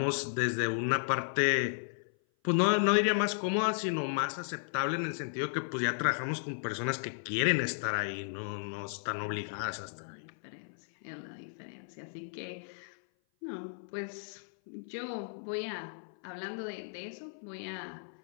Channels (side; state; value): right; silent; 55 dB below the other